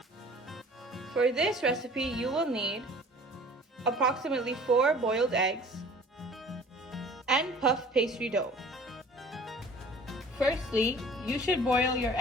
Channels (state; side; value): normal; both; correlation 0.47